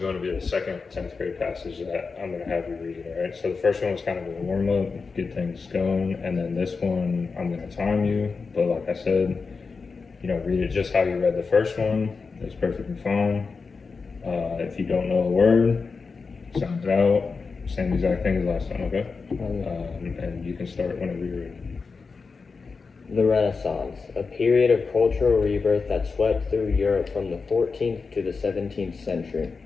to be the second 10th grade passage that I'm going to have you read, all right? So the first one was kind of a warm up, get things going, and then this one I'm going to time you, but like I said, read it just how you read the first one. It's perfectly fine. If you don't know a word, sound it out. Same exact thing as last time, okay? And you can start whenever you're ready. The Renaissance, a period of cultural rebirth that swept through Europe from the 14th to the 17th century,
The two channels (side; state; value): right; quieter; 4.7 dB